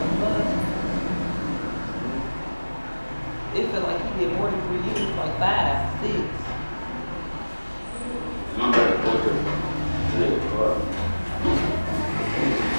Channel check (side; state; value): both; inverted; correlation -1.00